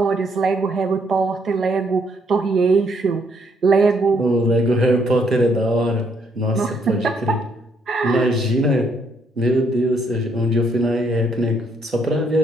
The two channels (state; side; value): normal; both; correlation 0.71